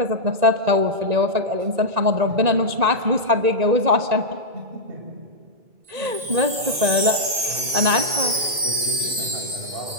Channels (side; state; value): left; late; 2.2 ms